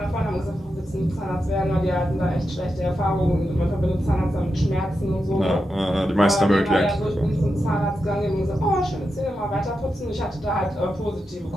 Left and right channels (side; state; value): both; normal; correlation 0.88